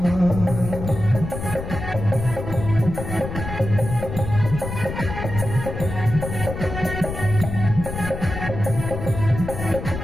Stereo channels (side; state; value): left; noise; rumble, 6 dB below the sound